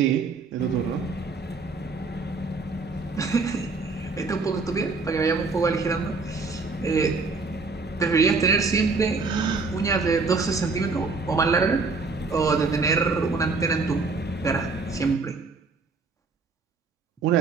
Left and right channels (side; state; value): left; quieter; 4.1 dB